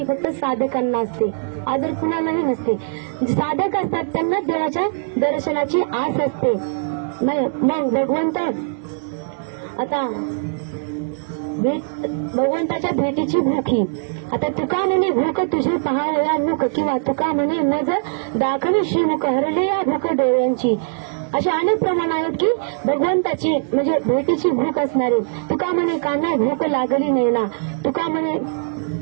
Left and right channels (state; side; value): silent; left; digital silence